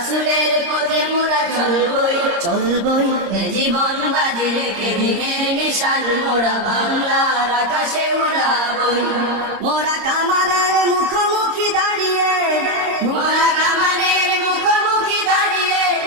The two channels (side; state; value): left; late; 26 ms